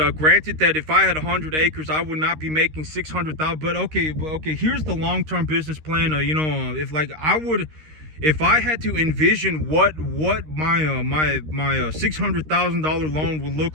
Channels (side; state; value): left; late; 13 ms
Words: granted that if I had 100 acres, I would not be making 600,000. But okay, here's the long-term business plan. If I had to envision what my $600,000 loan would look